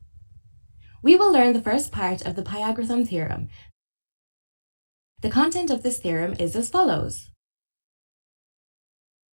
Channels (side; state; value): both; inverted; correlation -1.00